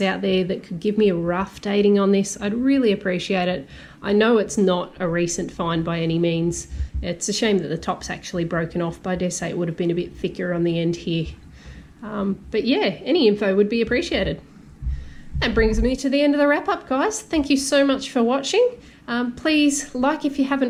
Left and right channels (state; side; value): identical; both; correlation 1.00